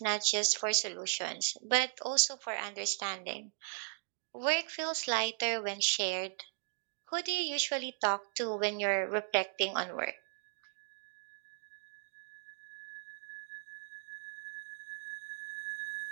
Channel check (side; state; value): left; silent; digital silence